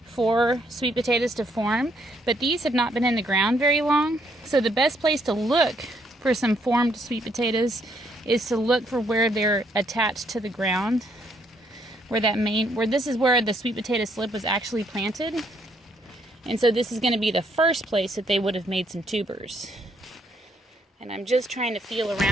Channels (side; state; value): both; normal; correlation 0.71